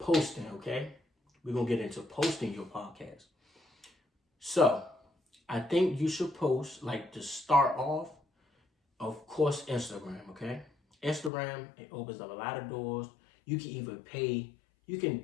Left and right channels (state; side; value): drops out; right; at 11.3 s